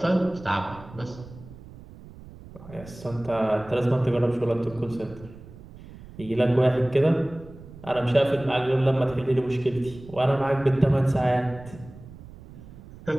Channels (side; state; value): right; noise; rumble, 18 dB below the sound